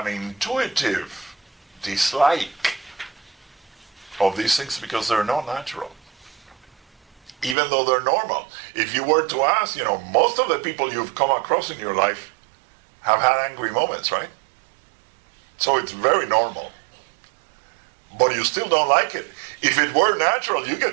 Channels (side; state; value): left; drops out; at 7.6 s